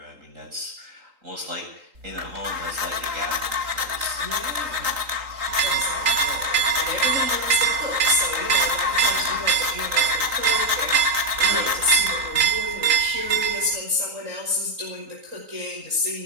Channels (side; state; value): left; late; 3.8 ms